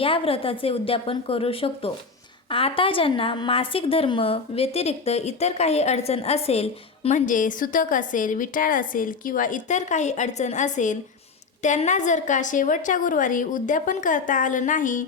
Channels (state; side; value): quieter; right; 4.7 dB